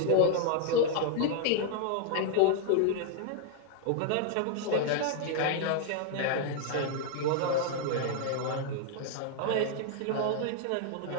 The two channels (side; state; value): both; different; correlation 0.00